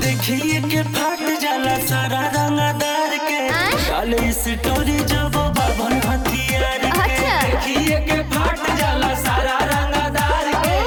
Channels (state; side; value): identical; both; correlation 1.00